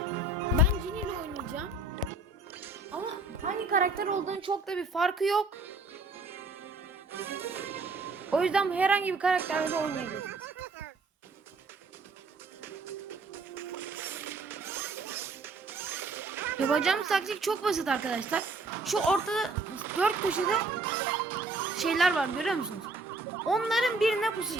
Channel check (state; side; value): quieter; left; 3.2 dB